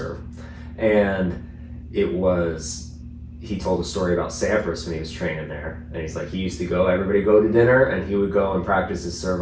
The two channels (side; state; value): both; identical; correlation 1.00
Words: And he told a story about Sampras when he was training there. And he's like, he used to everybody go to dinner, and he would go and practice his serve